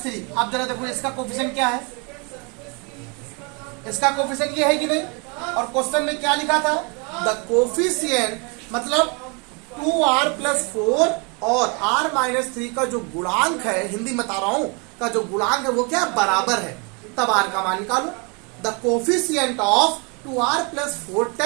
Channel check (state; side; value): quieter; left; 32.6 dB